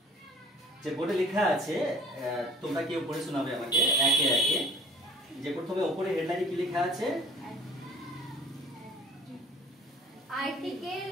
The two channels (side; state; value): both; normal; correlation 0.49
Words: যে বোর্ডে লেখা আছে, তোমরা কেউ পড়ে শোনাবে আমাকে একে একে। যে প্রথমে উপরে হেডলাইনে কি লেখা আছে? আর্টিকেল